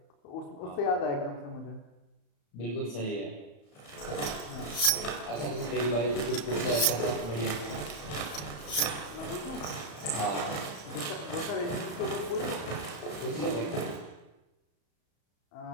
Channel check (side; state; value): right; late; 34 ms